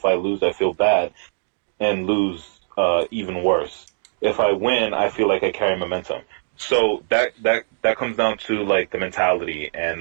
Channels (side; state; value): left; silent; digital silence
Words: I lose, I feel bad, and lose even worse. If I win, I feel like I carry momentum. So that comes down to like the mentality